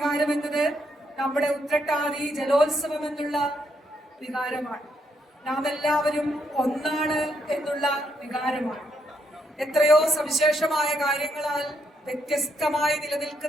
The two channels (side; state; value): both; normal; correlation 0.76